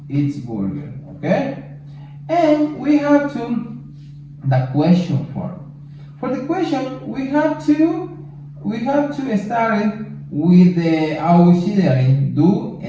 eat burger, okay? And we have the question form. For the question, we have to start it with the auxiliary do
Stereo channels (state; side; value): identical; both; correlation 1.00